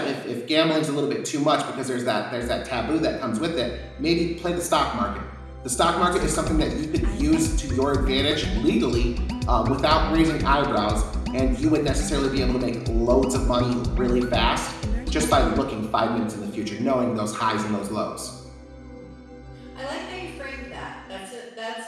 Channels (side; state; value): both; identical; correlation 1.00